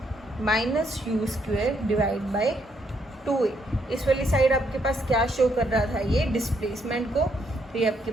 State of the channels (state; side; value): normal; both; correlation 0.73